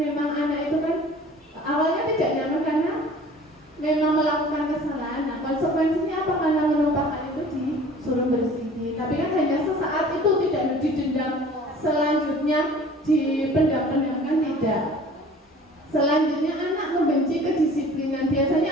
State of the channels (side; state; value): both; normal; correlation 0.47